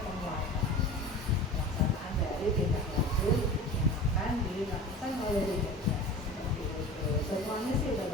penguatan pelaksanaan dari tindak lanjut yang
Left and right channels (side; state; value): both; normal; correlation 0.35